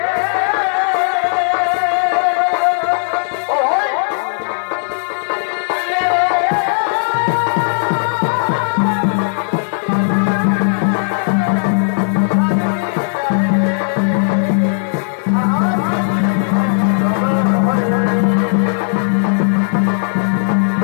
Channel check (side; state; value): right; silent; 59 dB below the other